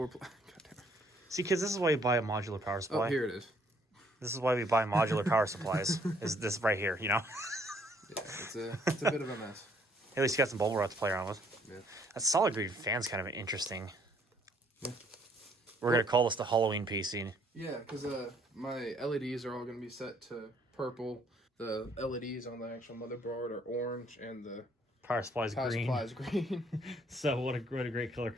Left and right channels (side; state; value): both; normal; correlation 0.65